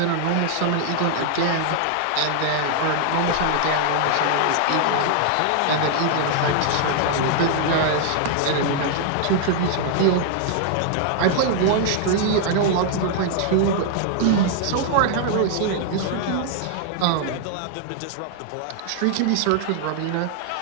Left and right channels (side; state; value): both; different; correlation 0.00